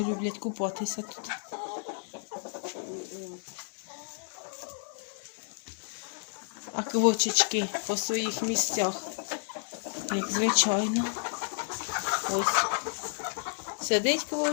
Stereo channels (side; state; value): right; silent; digital silence